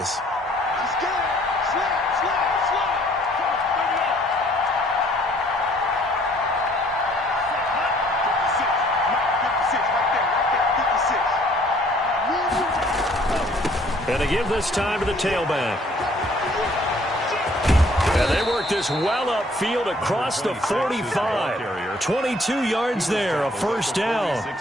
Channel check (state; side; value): normal; both; correlation 0.60